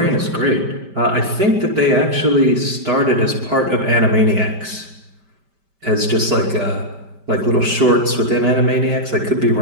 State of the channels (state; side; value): late; left; 5.1 ms